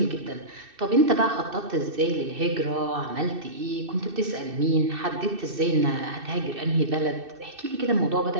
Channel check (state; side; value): late; left; 2.6 ms